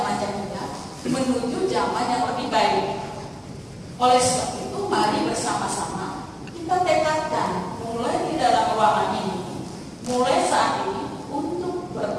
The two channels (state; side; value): identical; both; correlation 1.00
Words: jahiliyah menuju zaman yang lebih baik. Oleh sebab itu, mari bersama-sama kita tekadkan mulai di dalam ruangan ini, mulai saat ini untuk